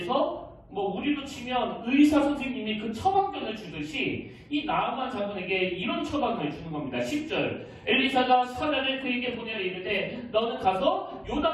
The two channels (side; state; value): both; identical; correlation 1.00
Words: 뭐 우리로 치면 의사 선생님이 그 처방전을 주듯이 이 나아만 장군에게 이런 처방을 주는 겁니다. 10절 엘리사가 사자를 그에게 보내어 이르되 너는 가서